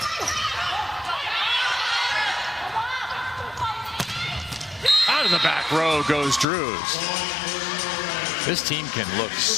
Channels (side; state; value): right; drops out; at 6.5 s